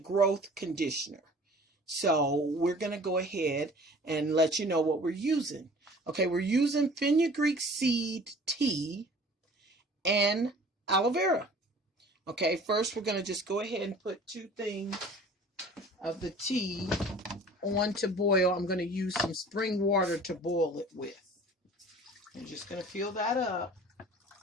conditioner. So we're going to go ahead and let you know what we're using. Okay, we're using fenugreek seed tea and aloe vera. Okay, first we're going to just go ahead and put 2 things of the tea on to boil. I'm going to use some spring water to boil it with. I'm just going to fill that up.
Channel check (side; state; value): both; normal; correlation 0.47